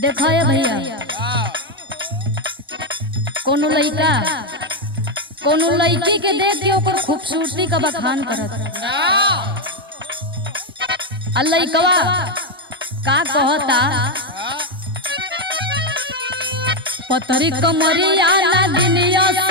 देखा है भैया, कोनो लड़का कोनो लड़की के देख के ओकर खूबसूरती का बखान करत, आ लड़कवा का कहता, पतरी कमरिया नगिनिया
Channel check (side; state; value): both; normal; correlation 0.04